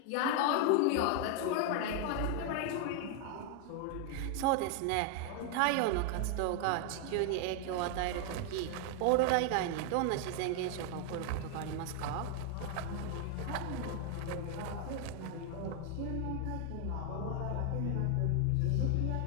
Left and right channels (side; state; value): both; different; correlation 0.00